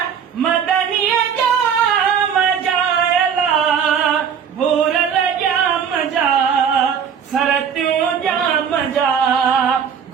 मदनीय जा मजाए ला भूरल जा मजा सरत्यूं जा मजा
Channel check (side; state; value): left; quieter; 7.5 dB